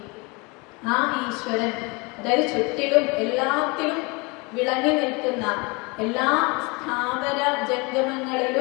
ആ ഈശ്വരൻ, അതായത് ചുറ്റിലും എല്ലാത്തിലും വിളങ്ങി നിൽക്കുന്ന എല്ലാ സ്ഥാവര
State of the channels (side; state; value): right; quieter; 28.0 dB